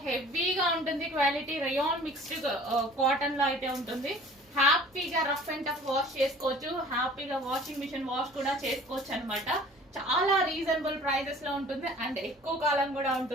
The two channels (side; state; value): both; normal; correlation 0.48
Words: హెవీగా ఉంటుంది క్వాలిటీ, రేయాన్ మిక్స్డ్ కాటన్ లో అయితే ఉంటుంది. హ్యాపీగా రఫ్ అండ్ టఫ్ వాష్ చేసుకోవచ్చు, హ్యాపీగా వాషింగ్ మిషన్ వాష్ కూడా చేసుకోవచ్చు అనమాట. చాలా రీజనబుల్ ప్రైజెస్ లో ఉంటుంది అండ్ ఎక్కువ కాలం కూడా